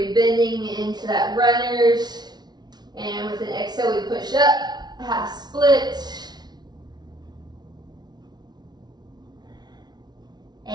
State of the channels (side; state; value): left; late; 0.20 ms